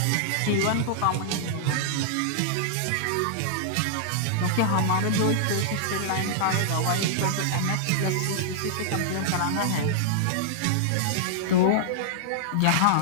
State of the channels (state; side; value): different; both; correlation -0.01